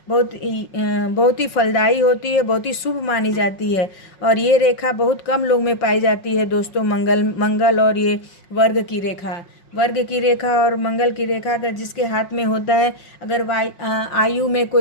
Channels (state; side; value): late; right; 5.5 ms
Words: बहुत ही फलदायी होती है, बहुत ही शुभ मानी जाती है। और ये रेखा बहुत कम लोग में पाई जाती है दोस्तों, मंगल और ये वर्ग की रेखा और मंगल की रेखा अगर जिसके हाथ में होता है, अगर आयु में